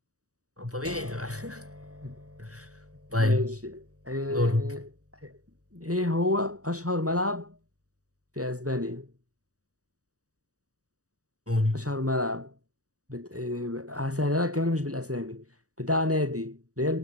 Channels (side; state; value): left; late; 0.66 ms